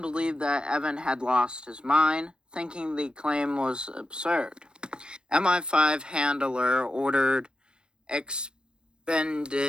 believed that Evan had lost his mind, thinking the claim was absurd. MI5 handler ordered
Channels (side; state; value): left; late; 0.049 ms